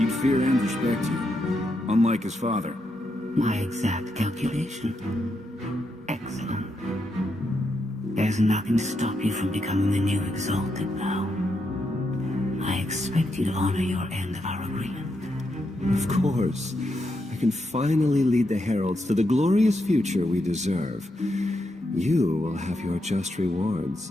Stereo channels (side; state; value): both; normal; correlation 0.82